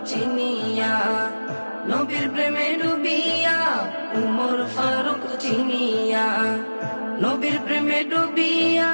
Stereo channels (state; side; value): inverted; both; correlation -1.00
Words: চিনিয়া নবীর প্রেমে ডুবিয়া উমর ফারুক চিনিয়া নবীর প্রেমে ডুবিয়া